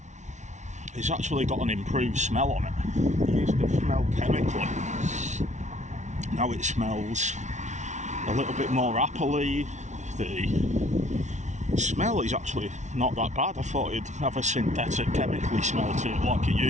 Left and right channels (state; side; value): late; left; 0.34 ms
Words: It's actually got an improved smell on it. It used to smell chemically. Now it smells a little bit more appley. The smell is actually not that bad. I thought it'd have a synthetic chemically smell to it like it